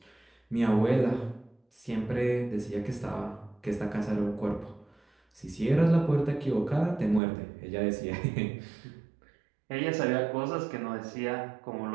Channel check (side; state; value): left; drops out; at 7.2 s